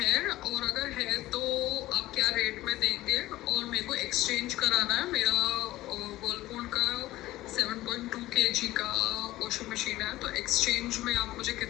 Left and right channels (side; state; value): right; quieter; 16.6 dB